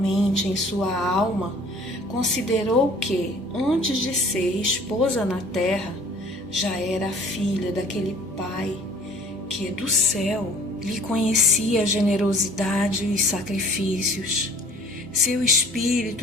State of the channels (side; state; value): both; normal; correlation 0.51